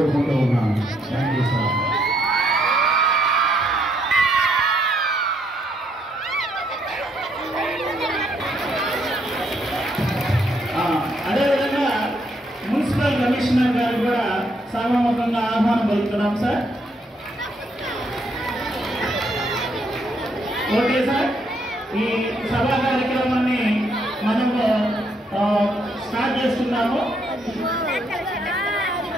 ఉన్నాను. Thank you sir. అదేవిధంగా మున్సిపల్ కమిషనర్ గారు కూడా సభాముఖంగా ఆహ్వానం పలుకుతున్నాం సార్. ఓకే సార్, ఈ సభా కార్యక్రమాన్ని మనము స్టార్ట్ చేస్తున్నాము.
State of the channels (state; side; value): normal; both; correlation 0.73